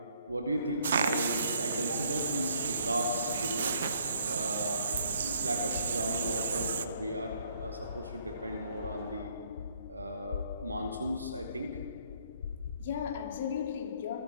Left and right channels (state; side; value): inverted; both; correlation -0.65